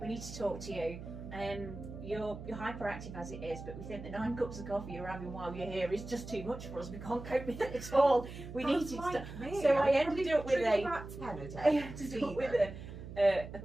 We need to talk to you. You're hyperactive as it is, but we think the 9 cups of coffee you're having while you're here is just too much for us. We can't cope with it at all. We need to stop. So I ended up with a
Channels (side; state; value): right; noise; hum, 11 dB below the sound